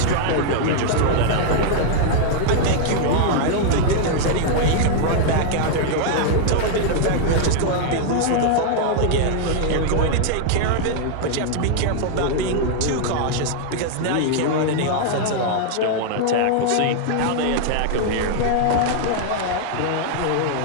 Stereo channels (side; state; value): both; different; correlation 0.00